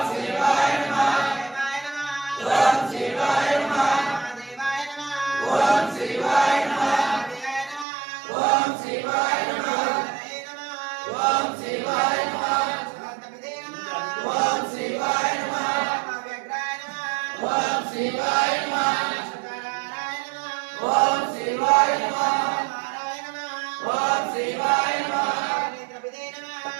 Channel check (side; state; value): left; drops out; at 7.9 s